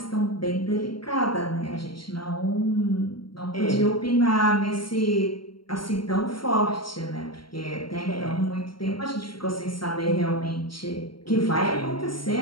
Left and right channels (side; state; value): right; late; 0.73 ms